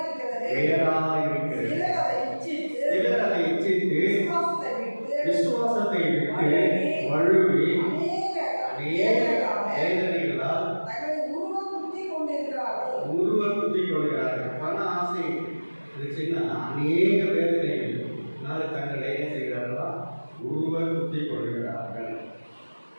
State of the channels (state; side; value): inverted; both; correlation -1.00